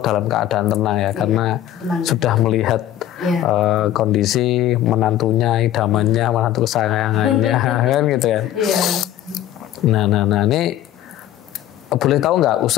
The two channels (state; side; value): quieter; right; 12.4 dB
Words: dalam keadaan tenang ya, karena sudah melihat kondisi menantunya, idamannya, menantu kesayangannya kan gitu ya. Nah ini boleh tahu nggak